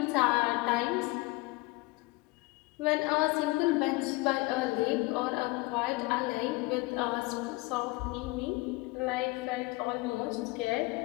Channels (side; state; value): right; quieter; 22.8 dB